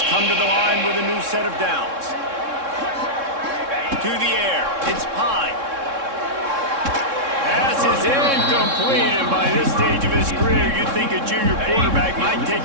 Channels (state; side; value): late; left; 3.6 ms